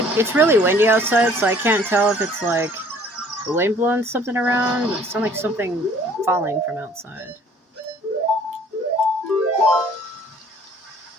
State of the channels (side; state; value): both; normal; correlation 0.55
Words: it's really windy outside, so I can't tell if it's like the wind blowing something around. It sounds like something falling from outside.